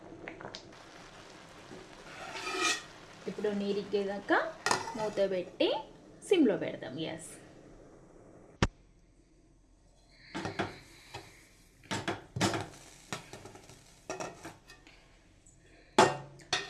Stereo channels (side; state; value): both; identical; correlation 1.00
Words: ఇప్పుడు నీరిగేదాకా మూత పెట్టి సిమ్లో పెడదాం గ్యాస్.